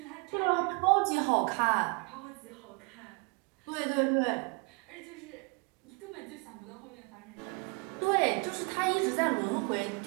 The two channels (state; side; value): quieter; left; 30.6 dB